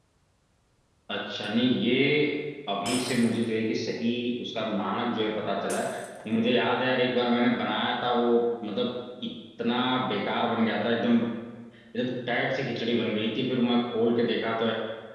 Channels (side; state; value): both; identical; correlation 1.00